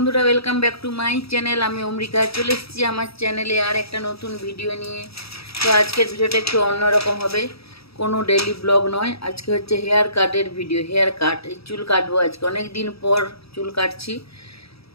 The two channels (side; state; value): right; late; 0.77 ms